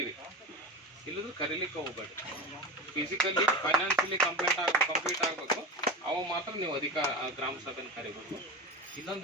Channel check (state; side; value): normal; both; correlation 0.25